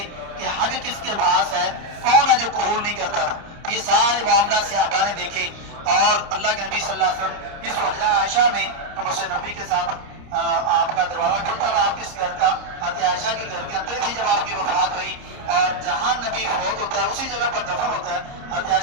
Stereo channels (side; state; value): left; late; 30 ms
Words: کہ حق کس کے پاس ہے، کون ہے جو قبول نہیں کرتا تھا۔ یہ سارے معاملات صحابہ نے دیکھے، اور اللہ کے نبی صلی اللہ علیہ وسلم اس حجرہ عائشہ میں مسجد نبی کے ساتھ آپ کا دروازہ کھلتا تھا، آپ کس گھر کا، حضرت عائشہ کے گھر کے اندر تھی جب آپ کی وفات ہوئی، اور جہاں نبی فوت ہوتا ہے اسی جگہ پر دفن ہوتا ہے، حضرت